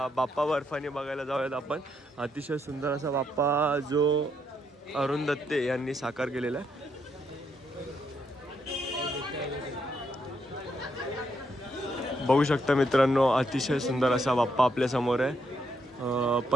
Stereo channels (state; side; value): normal; both; correlation 0.77